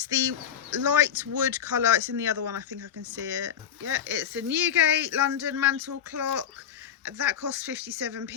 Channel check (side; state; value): right; quieter; 8.9 dB